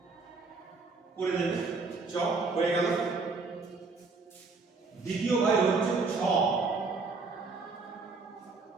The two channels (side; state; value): left; quieter; 4.1 dB